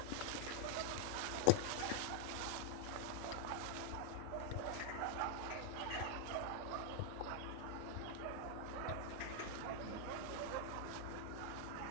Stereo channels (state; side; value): different; both; correlation -0.01